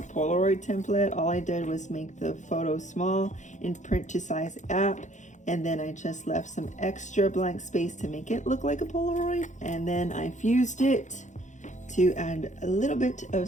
Polaroid template. All I did was make the photo small in print to size app, and then I just left some extra blank space to make it look like a Polaroid, and then I fused it to add a little bit of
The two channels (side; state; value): right; late; 0.35 ms